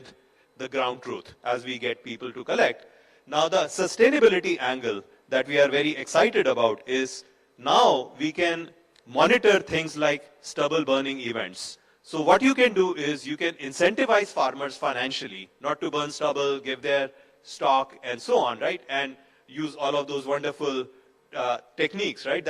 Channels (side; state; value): both; identical; correlation 1.00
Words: the ground truth as we get people to collect. Now, the sustainability angle that we are very excited about is now we can monitor things like stubble burning events. So what you can do is you can incentivize farmers financially not to burn stubble, give their stock and so on, right? And use all of those wonderful techniques, right,